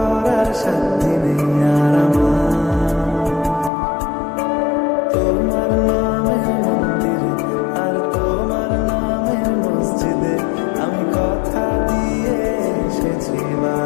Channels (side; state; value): right; drops out; at 3.7 s